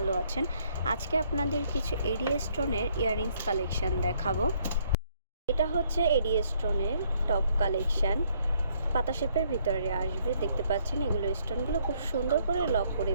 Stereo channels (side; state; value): both; inverted; correlation -0.68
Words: আছেন। আজকে আপনাদের কিছু এডি স্টোনের ইয়াররিংস কালেকশন দেখাবো। এটা হচ্ছে এডি স্টোনের টপ কালেকশন, পাতা শেপের ভিতরে আসবে। দেখতে পাচ্ছেন এগুলো স্টোনগুলো খুব সুন্দর করে লক করে